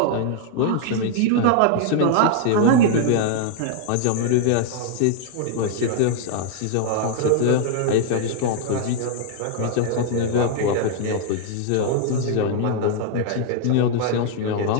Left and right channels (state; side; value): different; both; correlation 0.00